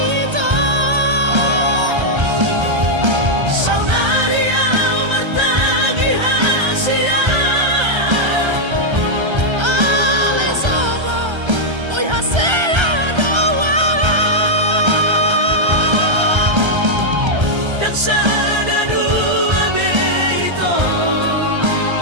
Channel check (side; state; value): left; late; 1.3 ms